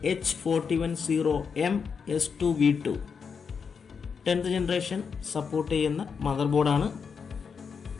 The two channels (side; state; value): right; quieter; 6.0 dB